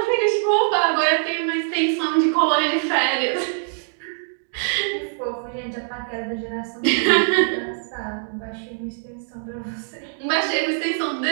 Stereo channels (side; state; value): left; silent; 63 dB below the other